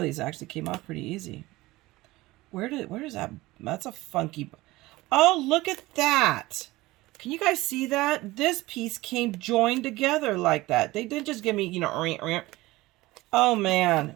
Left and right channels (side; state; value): left; quieter; 19.3 dB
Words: these actually came off pretty easy. Where is that? That's a funky... Oh, look at that. Can you guys see that? This piece came joined together like that. They didn't just give me, you know... Oh, man.